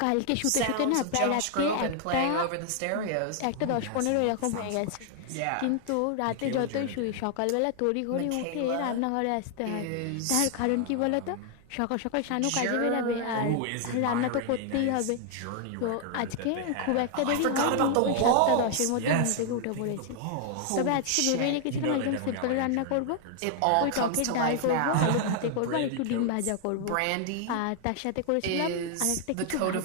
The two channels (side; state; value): both; different; correlation 0.00